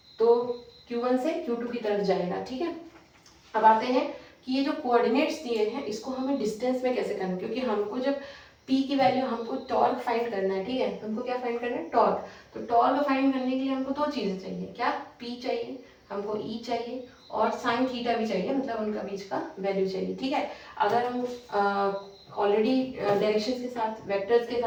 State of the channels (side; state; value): both; identical; correlation 1.00